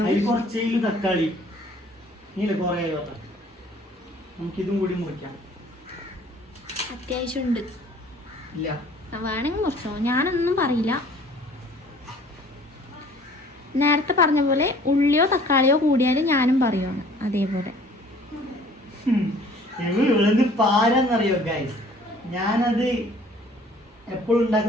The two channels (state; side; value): normal; both; correlation 0.53